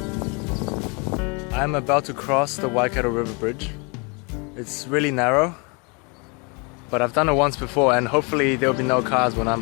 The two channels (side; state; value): right; quieter; 31.7 dB